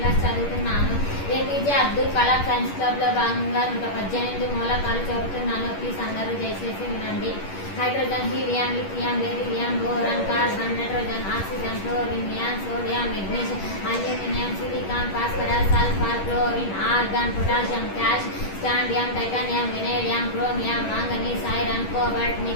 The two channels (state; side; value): late; right; 11 ms